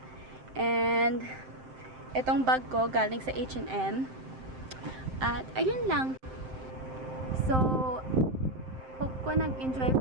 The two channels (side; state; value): left; late; 7.7 ms